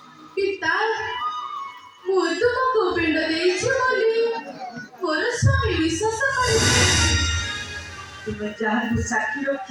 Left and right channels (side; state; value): both; identical; correlation 1.00